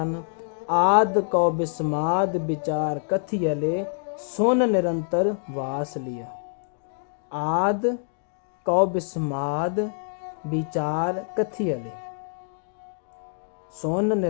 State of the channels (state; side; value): silent; right; digital silence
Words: ਆਦ ਕਉ ਬਿਸਮਾਦ ਵਿਚਾਰ ਕਥੀਅਲੇ ਸੁਨ ਨਿਰੰਤਰ ਵਾਸ ਲਿਆ। ਆਦ ਕਉ ਬਿਸਮਾਦ ਵਿਚਾਰ ਕਥੀਅਲੇ ਸੁਨ